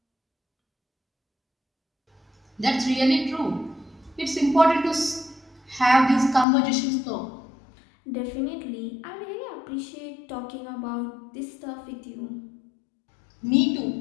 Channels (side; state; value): right; drops out; at 6.5 s